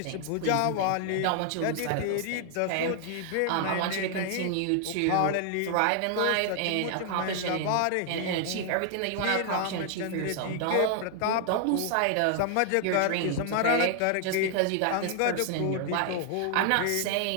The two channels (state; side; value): different; both; correlation 0.00